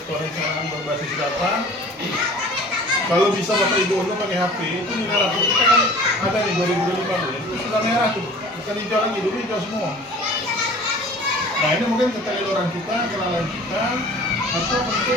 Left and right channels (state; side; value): normal; both; correlation 0.45